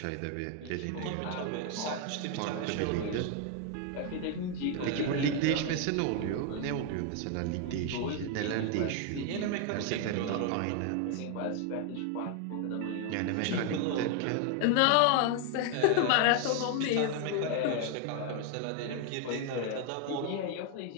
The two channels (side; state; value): both; different; correlation 0.01